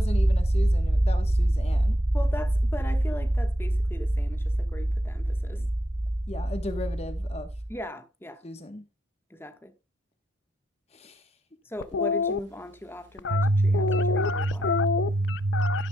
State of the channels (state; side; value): normal; both; correlation 0.79